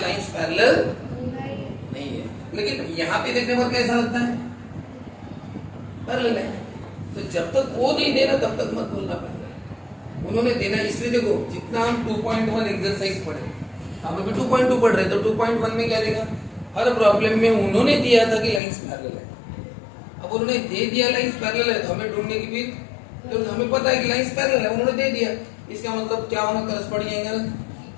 लाइंस पैरेलल नहीं है, लेकिन यहाँ पे देखने पर कैसा लगता है, पैरेलल है। तो जब तक वो नहीं देना तब तक मत बोलना पैरेलल। उन्होंने देना, इसलिए देखो जितना हम 2.1 एक्सरसाइज पढ़े, हम अभी 2.2 पढ़ रहे, तो 2.1 में क्या देगा, हर प्रॉब्लम में उन्होंने दिया था कि लाइंस पैरेलल है। अब उन्होंने दे दिया लाइंस पैरेलल है, तो हमें ढूंढने की भी, तो हमें पता है कि लाइंस पैरेलल है, उन्होंने दे दिया, इसका मतलब क्या होना, corresponding angle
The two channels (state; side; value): drops out; right; at 18.6 s